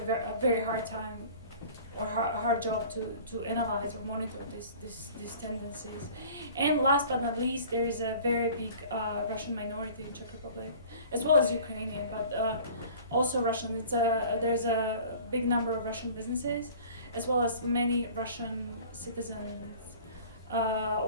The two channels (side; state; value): both; inverted; correlation -0.45